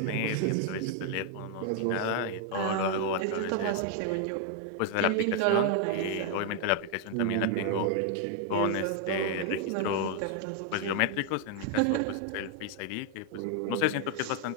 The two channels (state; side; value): different; both; correlation 0.01